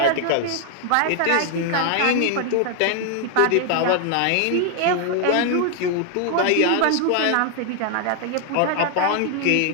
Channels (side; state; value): both; different; correlation 0.00